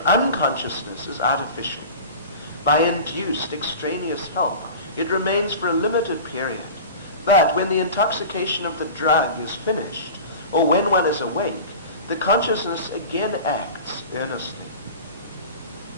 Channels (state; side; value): inverted; both; correlation -0.35